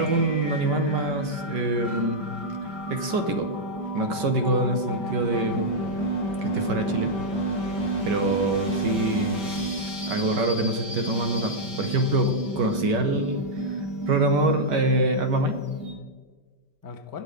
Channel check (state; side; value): late; left; 5.2 ms